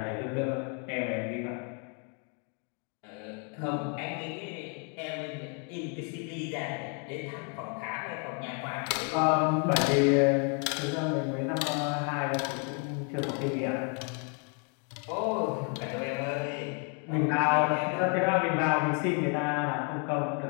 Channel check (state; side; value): quieter; right; 39.1 dB